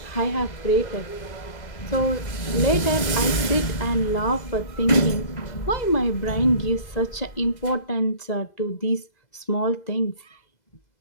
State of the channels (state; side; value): late; right; 2.0 ms